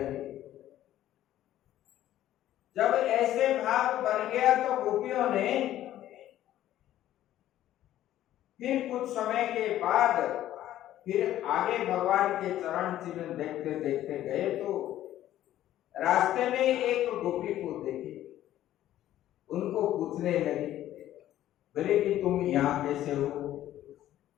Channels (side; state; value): right; quieter; 13.0 dB